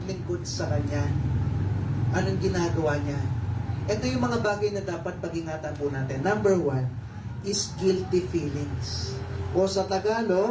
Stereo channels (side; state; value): both; identical; correlation 1.00